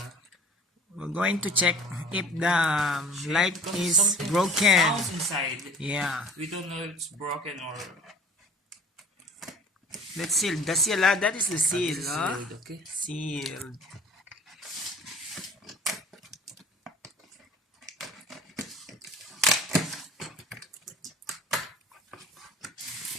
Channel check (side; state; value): both; normal; correlation 0.46